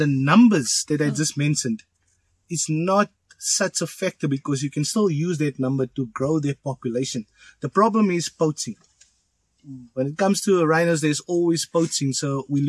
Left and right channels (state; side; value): identical; both; correlation 1.00